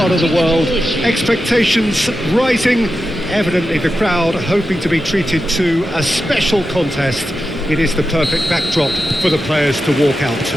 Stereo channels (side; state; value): both; normal; correlation 0.90